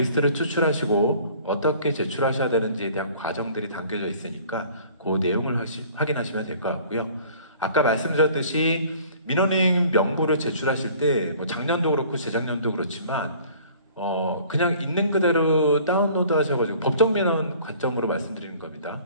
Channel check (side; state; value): both; inverted; correlation -0.51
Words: 추출하시고 어떻게 제출하셔야 되는지에 대한 과정들이 담겨져 있으니까 그 내용을 확인하시면 될 것 같고요. 아까 말씀드렸듯이 민원인 명부를 제출하실 때 뭐 작년도 그렇고 재작년도 그렇지만 그냥 있는 그대로 다운로드 하셔가지고 법정 민원 관점으로 말씀드리는